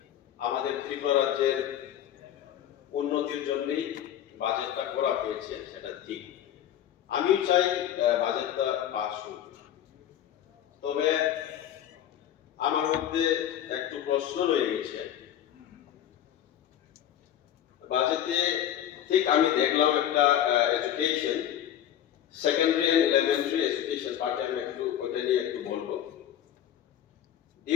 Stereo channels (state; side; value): quieter; right; 10.9 dB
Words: আমাদের ত্রিপুরা রাজ্যের উন্নতির জন্যই বাজেটটা করা হয়েছে, সেটা ঠিক। আমিও চাই বাজেটটা পাস হোক, তবে আমার মধ্যে একটু প্রশ্ন রয়ে গেছে। বাজেটে ঠিক আমি দেখলাম একটা education, secondary and elementary education পার্টে আমি একটু ওটা নিয়ে একটু বলবো।